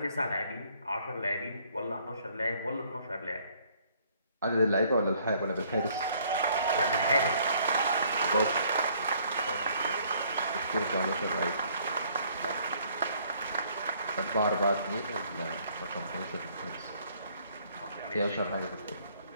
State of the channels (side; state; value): both; inverted; correlation -0.63